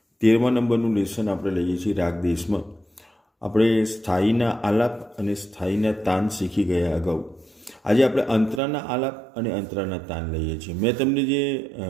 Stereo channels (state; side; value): drops out; left; at 8.6 s